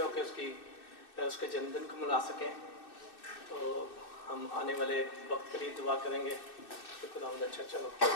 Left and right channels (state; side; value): late; right; 2.6 ms